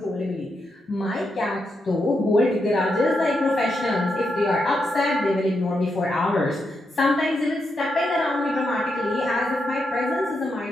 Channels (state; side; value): normal; both; correlation 0.83